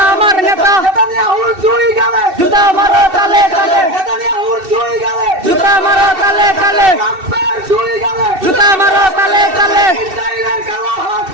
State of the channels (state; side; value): late; left; 2.7 ms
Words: আমার নেতা জুতা মারো তালে তালে জুতা মারো তালে তালে জুতা মারো তালে তালে